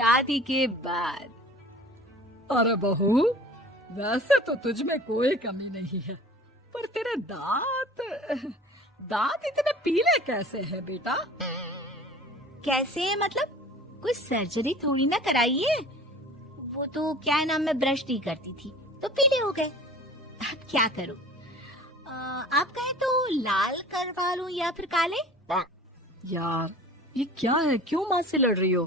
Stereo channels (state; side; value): normal; both; correlation 0.44